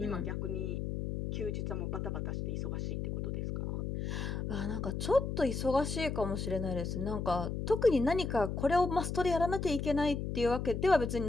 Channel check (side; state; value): left; noise; hum, 3 dB below the sound